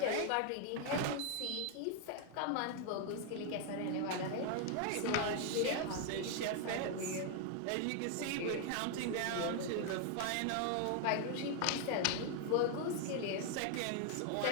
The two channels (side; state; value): both; different; correlation 0.00